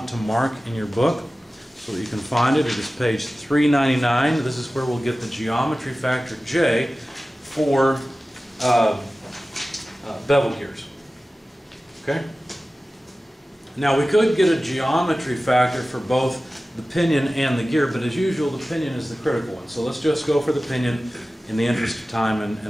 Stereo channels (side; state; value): both; normal; correlation 0.96